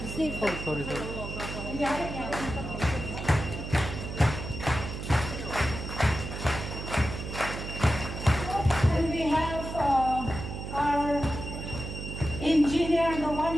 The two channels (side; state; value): right; noise; hum, 7 dB below the sound